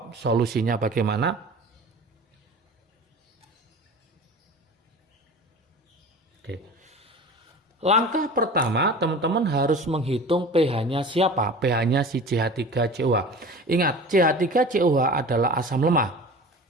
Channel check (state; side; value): normal; both; correlation 0.37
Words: solusinya bagaimana. Oke. Langkah pertama, teman-teman harus menghitung pH-nya siapa? pH-nya si CH3COH. Ingat, CH3COH adalah asam lemah.